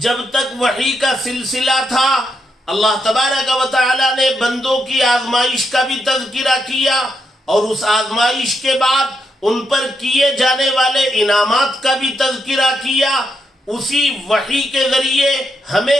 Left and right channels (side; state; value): both; normal; correlation 0.81